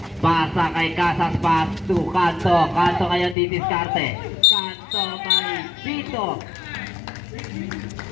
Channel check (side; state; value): right; drops out; at 3.4 s